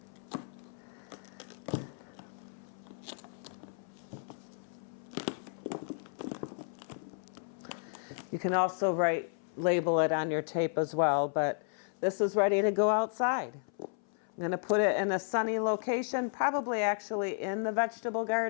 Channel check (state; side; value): silent; right; 55 dB below the other